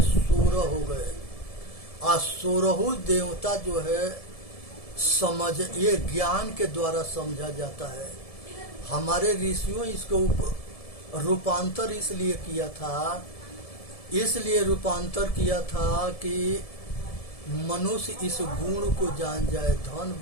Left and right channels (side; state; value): right; late; 1.7 ms